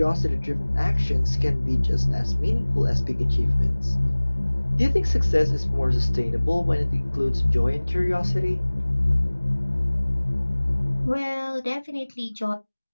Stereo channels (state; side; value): inverted; both; correlation -1.00